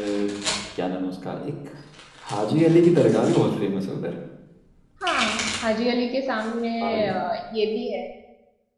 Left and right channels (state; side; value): identical; both; correlation 1.00